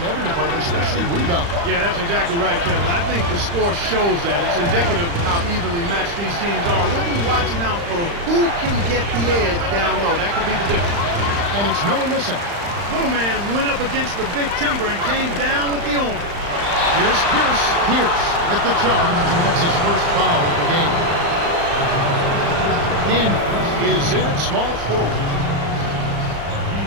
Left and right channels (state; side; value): late; left; 35 ms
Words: every department, especially rebound. Yeah, that's exactly right, Kevin. I think the score shows that. It's indicative of how evenly matched these teams are. We'll be watching out for who can get the edge down low. That could be the difference. And it's Miller missing. Little man went up against the big timber and came down with the arm. Here's Pierce. Pierce with the charge, and that's his first foul of the game. Daniels is in at small forward.